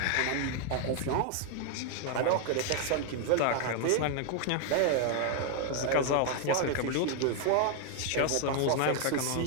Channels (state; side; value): different; both; correlation 0.00